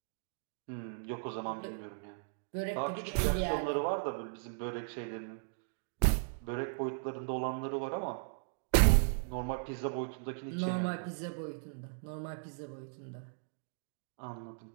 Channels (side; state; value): left; silent; digital silence